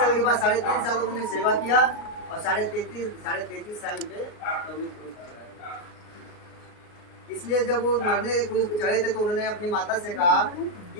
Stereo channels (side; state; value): right; late; 38 ms